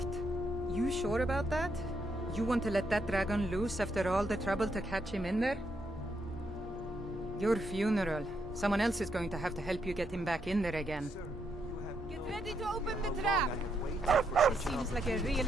You sure about that? You want to let that dragon loose after all the trouble to catch him in there? Your funeral. Someone else is going to have to help you get him back in there again. Get ready to open the trap! This seems like a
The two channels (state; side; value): normal; both; correlation 0.78